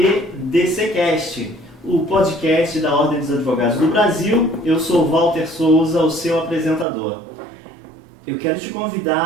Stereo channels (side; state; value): left; drops out; at 6.9 s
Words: DCcast, o podcast da Ordem dos Advogados do Brasil. Eu sou Walter Souza, o seu apresentador. Eu quero te